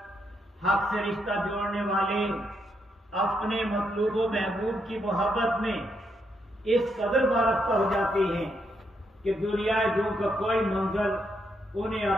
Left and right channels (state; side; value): normal; both; correlation 0.78